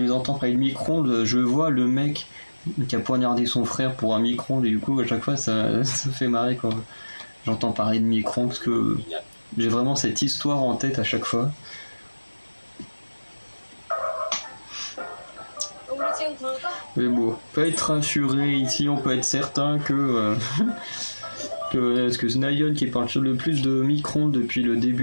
les entends parler de micro-ondes, je vois le mec qui a poignardé son frère pour un micro-ondes et du coup à chaque fois ça fait marrer quand j'entends parler de micro-ondes parce que j'ai vraiment cette histoire en tête à chaque fois. 우리 지금 굴까? Mais bon, on peut être rassuré ici, on peut être certain que parce que Snayon qui parle le plus de micro-ondes depuis le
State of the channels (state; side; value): inverted; both; correlation -1.00